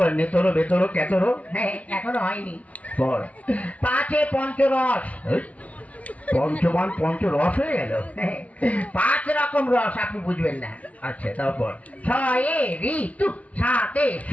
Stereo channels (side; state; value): right; late; 0.067 ms